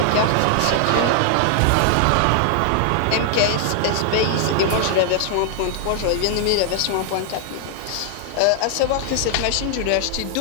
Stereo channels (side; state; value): both; different; correlation 0.00